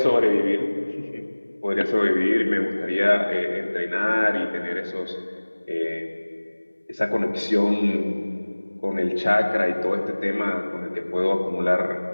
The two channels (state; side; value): inverted; both; correlation -1.00